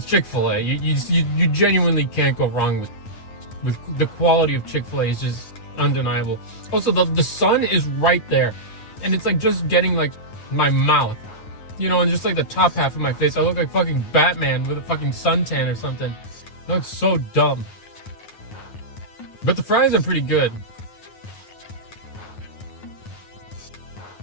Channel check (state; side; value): late; right; 9.3 ms